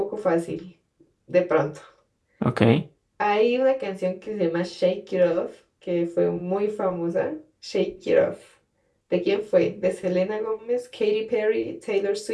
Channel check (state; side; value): identical; both; correlation 1.00